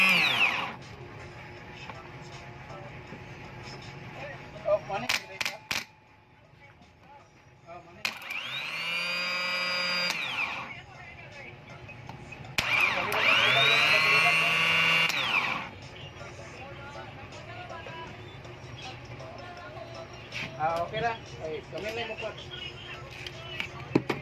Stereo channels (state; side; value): identical; both; correlation 1.00